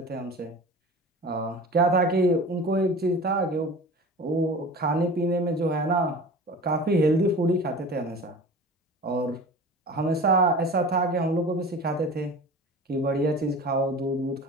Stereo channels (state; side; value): normal; both; correlation 0.37